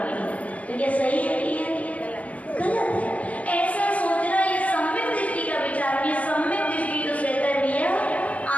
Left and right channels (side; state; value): right; late; 0.068 ms